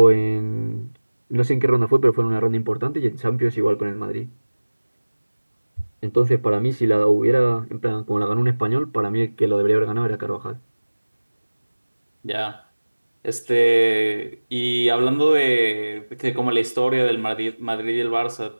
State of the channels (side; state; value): both; inverted; correlation -1.00